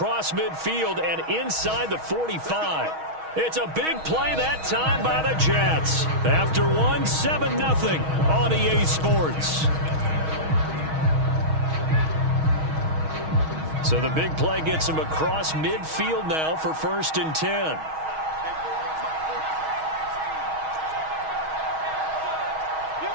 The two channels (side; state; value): left; late; 6.3 ms